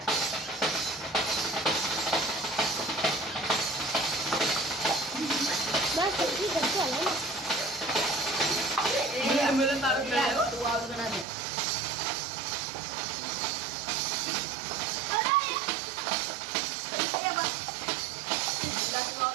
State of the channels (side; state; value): left; drops out; at 11.2 s